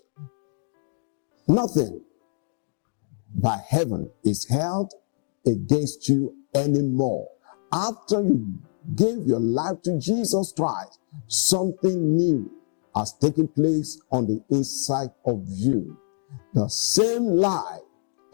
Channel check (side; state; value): right; silent; digital silence